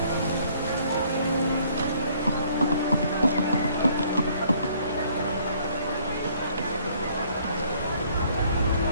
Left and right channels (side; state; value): both; inverted; correlation -0.62